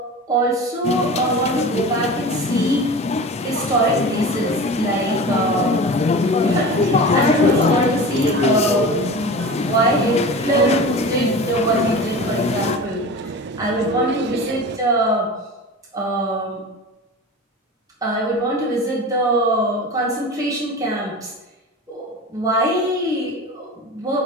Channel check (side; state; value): both; normal; correlation 0.33